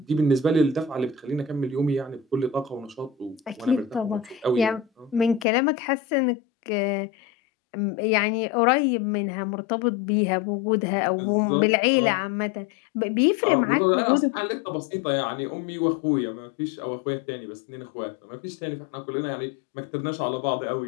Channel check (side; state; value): right; drops out; at 5.5 s